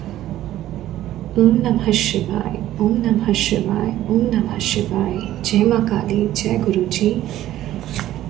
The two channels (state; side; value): quieter; left; 13.7 dB